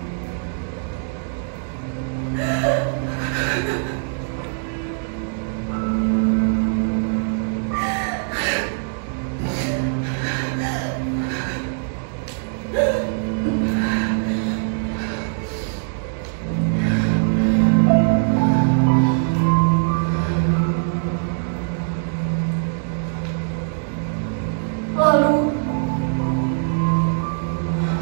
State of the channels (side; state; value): left; silent; digital silence